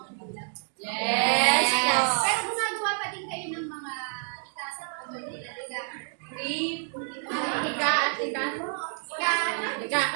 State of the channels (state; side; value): silent; left; 55 dB below the other